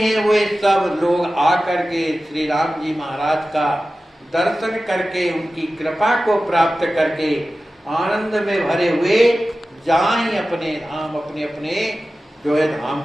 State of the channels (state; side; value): normal; both; correlation 0.95